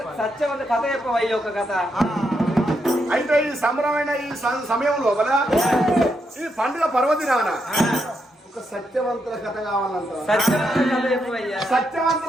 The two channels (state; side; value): normal; both; correlation 0.81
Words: కథ చెప్పవయ్యా ఒక కథ అయితే ఈ సంబరమైన ఈ సమయం లోపల ఈ పండుగ పర్వదినాన ఒక సత్యవంతుల కథ కావాలంట సత్యవంత కథ చెప్పవయ్యా